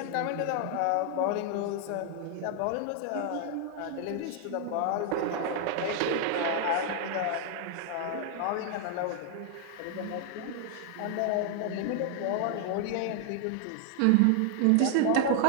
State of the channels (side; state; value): both; different; correlation 0.00